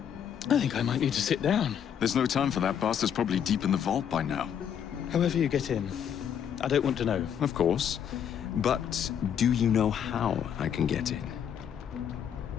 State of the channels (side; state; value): right; quieter; 8.6 dB